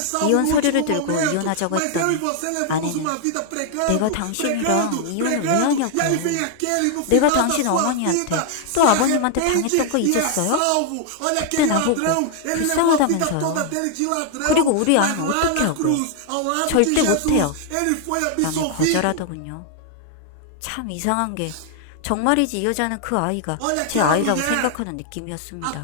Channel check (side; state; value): both; different; correlation 0.00